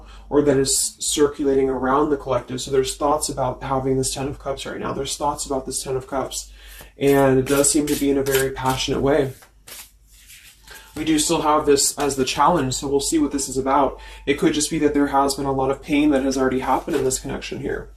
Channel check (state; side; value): identical; both; correlation 1.00